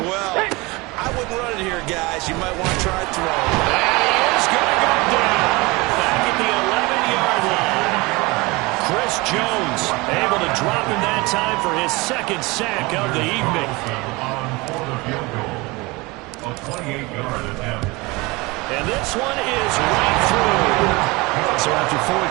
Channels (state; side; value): quieter; left; 24.0 dB